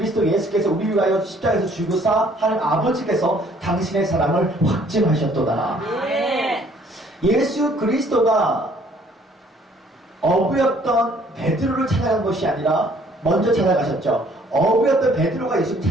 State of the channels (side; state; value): both; normal; correlation 0.60